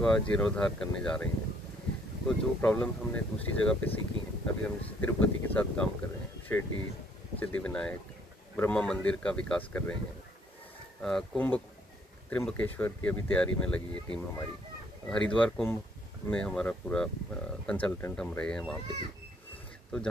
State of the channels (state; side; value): normal; both; correlation 0.66